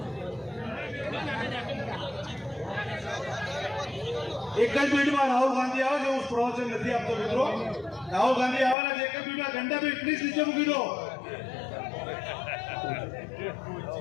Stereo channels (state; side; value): drops out; right; at 8.8 s